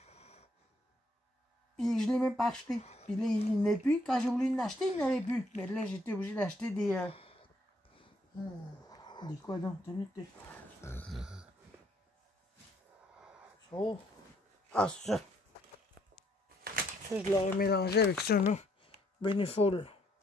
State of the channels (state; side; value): normal; both; correlation 0.70